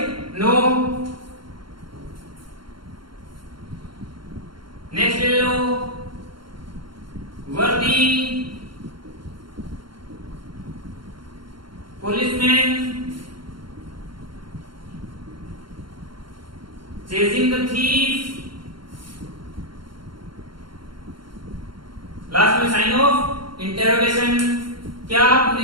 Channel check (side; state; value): left; late; 0.73 ms